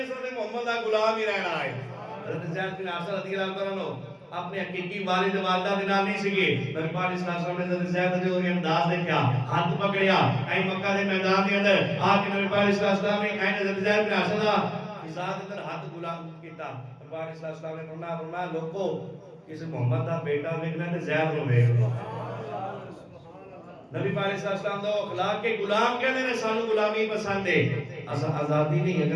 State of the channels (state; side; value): identical; both; correlation 1.00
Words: سر محمد دا غلام ہی رہنا ہے. حضرت زید بن حارثہ رضی اللہ تعالیٰ عنہ اپنے حقیقی والد والدہ دے نال نہیں سگے. نبی پاک علیہ السلام نے حضرت زید دے انداز دیکھا ہاتھ پکڑیا اے مکہ دے میدان دے اندر آ کے نبی پاک علیہ السلام نے اے حضرت زید بن حارثہ دا فضا دے اندر ہاتھ غلام کیتا. نبی پاک علیہ السلام نے فرمایا لوگو کسی محمد دا بیٹا ویکھنا تے زید نو ویکھ لو. نبی پاک علیہ السلام دا اخلاق کے غلام کہندے نے سانو غلامی پسند ہے. اسا آزادی نہیں